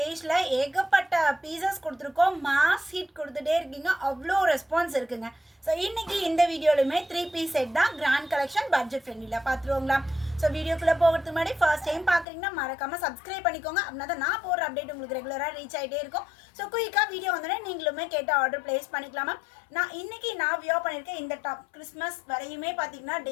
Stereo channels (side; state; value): right; drops out; at 12.2 s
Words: ஏகப்பட்ட பீசஸ் கொடுத்துருக்கோம். மாஸ் ஹிட் கொடுத்துட்டே இருக்கீங்க, அவ்வளோ ரெஸ்பான்ஸ் இருக்குங்க. ஸோ இன்னைக்கு இந்த வீடியோலுமே 3 பீஸ் செட் தான், கிராண்ட் கலெக்ஷன், பட்ஜெட் ஃப்ரெண்ட்லியில் பார்த்துருவோங்களா. ஸோ வீடியோக்குள்ளே போகிறதுக்கு முன்னாடி ஃபர்ஸ்ட் டைம் பார்க்குறீங்கன்னா மறக்காமல் சப்ஸ்கிரைப் பண்ணிக்கோங்க. அப்படின்னா தான் நான் போகிற அப்டேட் உங்களுக்கு ரெகுலராக ரீச் ஆகிட்டே இருக்கும். ஸோ குயிக்காக வீடியோ வந்தோடனே நீங்களுமே கேட்ட ஆர்டர் பிளேஸ் பண்ணிக்கலாமா. இன்னைக்கு நான் வியோ பண்ணியிருக்கேன் இந்த டாப். கிறிஸ்மஸ் வரையுமே பார்த்தீங்கன்னா